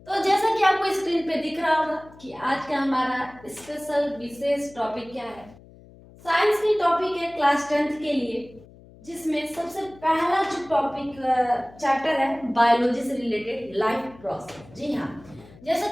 तो जैसा कि आपको स्क्रीन पे दिख रहा होगा कि आज का हमारा स्पेशल विशेष टॉपिक क्या है। साइंस की टॉपिक है क्लास 10th के लिए, जिसमें सबसे पहला जो टॉपिक चैप्टर है बायोलॉजी से रिलेटेड लाइफ प्रोसेस। जी हाँ, जैसा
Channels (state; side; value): noise; left; hum, 23 dB below the sound